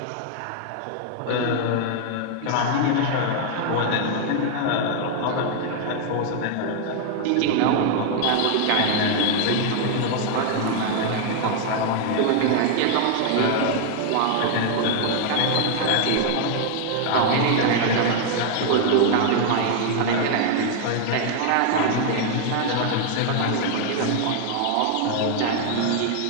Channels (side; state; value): both; different; correlation 0.00